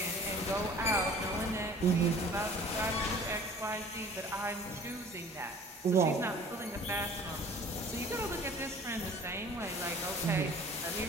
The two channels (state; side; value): normal; both; correlation 0.47